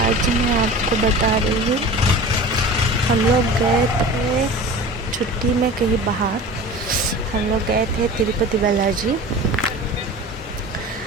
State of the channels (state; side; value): normal; both; correlation 0.36